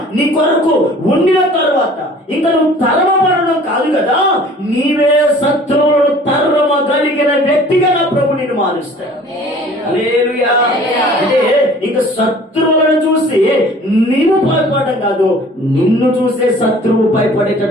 నీ కొరకు ఉండిన తర్వాత ఇంకా నువ్వు తరమబడడం కాదు కదా, నీవే శత్రువులను తరమగలిగిన వ్యక్తిగా నా ప్రభు నిన్ను మారుస్తాడు. హల్లెలూయా. అంటే ఇంకా శత్రువులను చూసి నీవు భయపడడం కాదు, నిన్ను చూసే శత్రువు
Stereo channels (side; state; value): both; normal; correlation 0.49